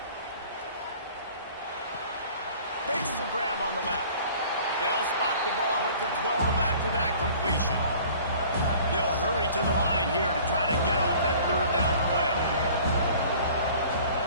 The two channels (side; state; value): both; inverted; correlation -0.49